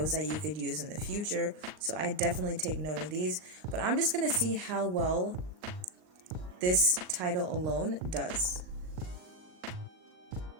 that you could use in the future. So I definitely take note of these, but I'm just going to see how well this title alone does.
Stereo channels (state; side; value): late; left; 39 ms